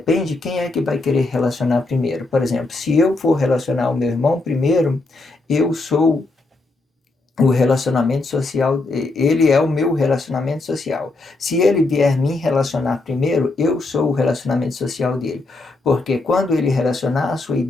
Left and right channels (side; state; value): right; quieter; 3.2 dB